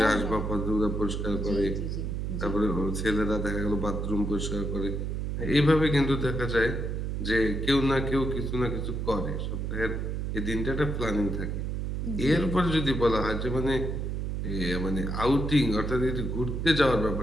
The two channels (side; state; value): right; noise; hum, 2 dB below the sound